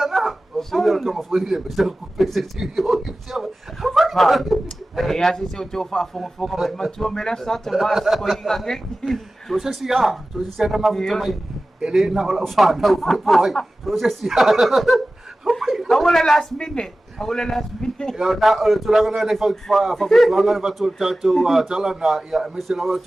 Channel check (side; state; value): both; normal; correlation 0.96